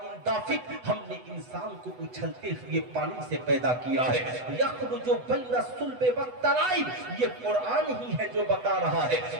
दाफिक, हमने इंसान को उछलते हुए पानी से पैदा किया है। यखरुजु बैन सुल्बे व तराइब, ये कुरान ही है जो बता रहा है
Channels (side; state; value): left; late; 8.0 ms